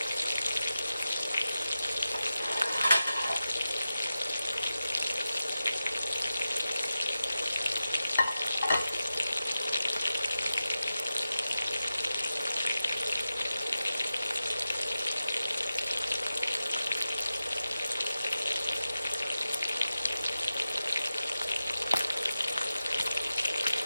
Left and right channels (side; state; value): both; inverted; correlation -0.92